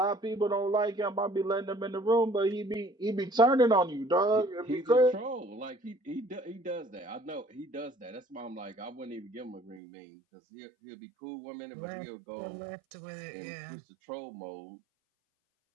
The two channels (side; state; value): left; drops out; at 9.8 s